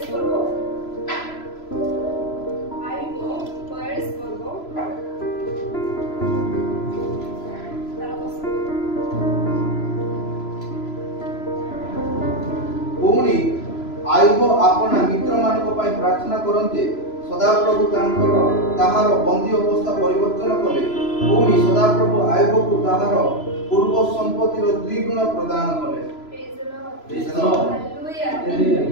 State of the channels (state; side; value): late; right; 3.0 ms